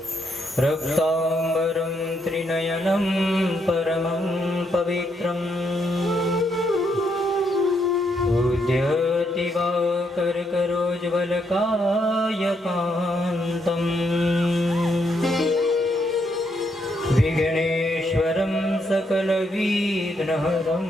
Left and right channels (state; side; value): normal; both; correlation 0.76